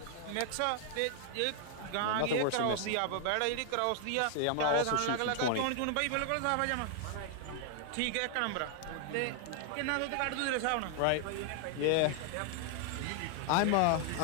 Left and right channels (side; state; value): both; different; correlation 0.00